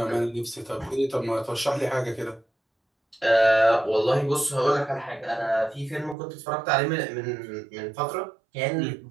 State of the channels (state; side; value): drops out; left; at 6.2 s